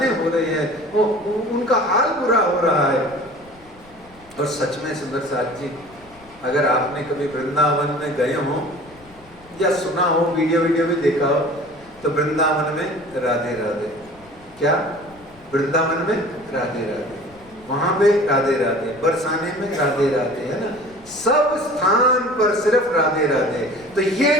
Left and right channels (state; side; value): noise; left; rumble, 26 dB below the sound